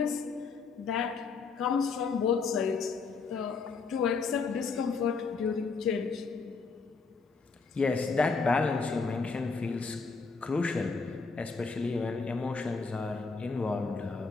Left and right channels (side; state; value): right; quieter; 4.7 dB